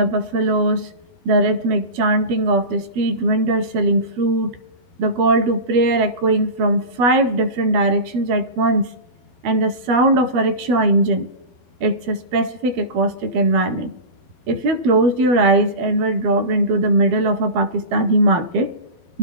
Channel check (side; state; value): left; late; 12 ms